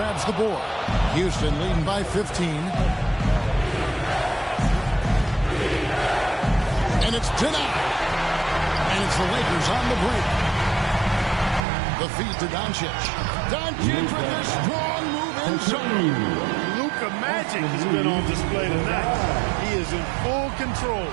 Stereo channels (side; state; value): left; drops out; at 11.7 s